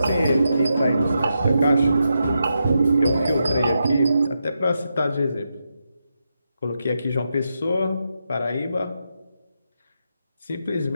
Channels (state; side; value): inverted; both; correlation -0.86